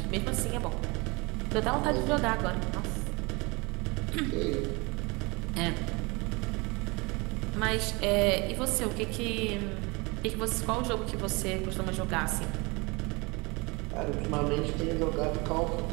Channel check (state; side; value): quieter; left; 26.6 dB